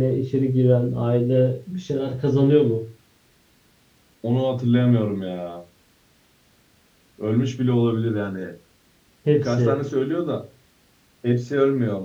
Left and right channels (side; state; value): both; identical; correlation 1.00